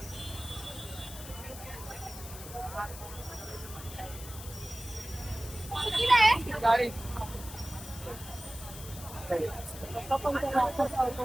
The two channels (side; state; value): left; noise; hiss, 13 dB below the sound